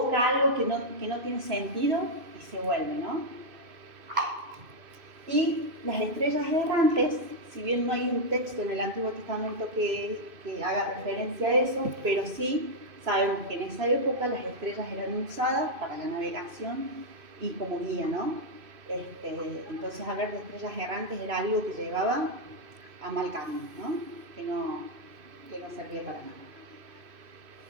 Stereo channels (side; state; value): left; late; 2.5 ms